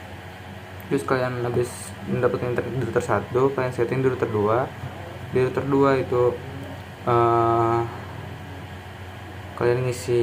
Terus kalian habis mendapatkan internet di router 1, kalian setting di router 2. Di router 2 itu kalian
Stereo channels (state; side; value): identical; both; correlation 1.00